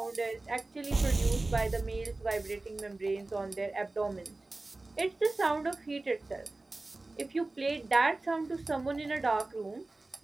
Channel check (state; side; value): quieter; left; 3.1 dB